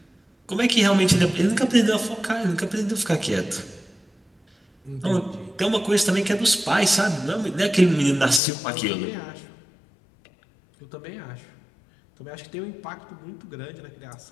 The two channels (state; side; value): drops out; right; at 8.4 s